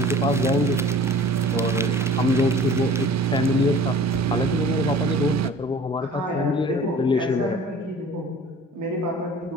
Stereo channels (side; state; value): both; normal; correlation 0.45